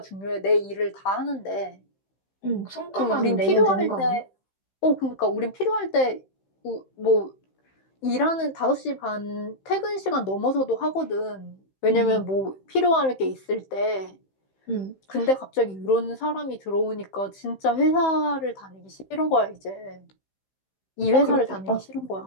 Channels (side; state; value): right; late; 15 ms